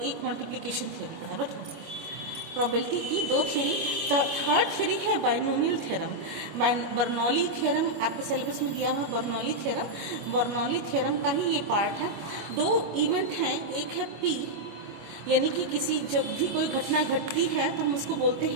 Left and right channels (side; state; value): left; late; 25 ms